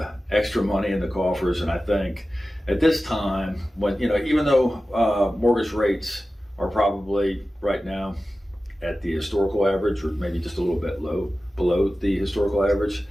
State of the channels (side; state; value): both; normal; correlation 0.95